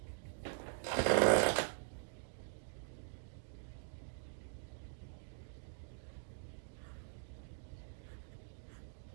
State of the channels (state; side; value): silent; left; digital silence